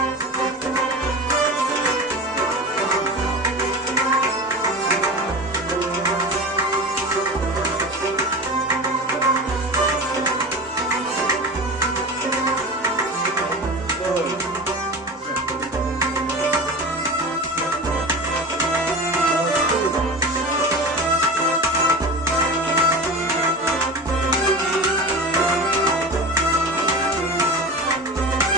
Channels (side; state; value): both; normal; correlation 0.30